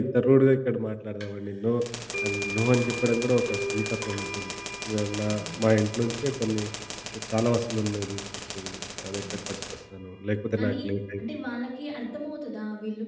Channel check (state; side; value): identical; both; correlation 1.00